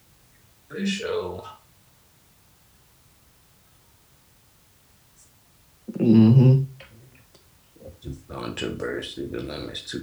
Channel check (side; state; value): both; identical; correlation 1.00